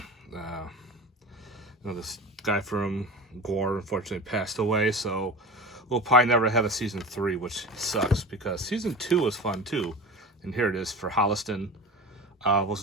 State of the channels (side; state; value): both; normal; correlation 0.32